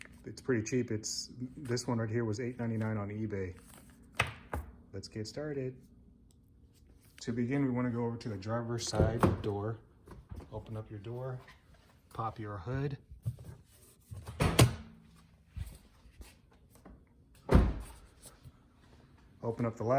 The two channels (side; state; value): both; identical; correlation 1.00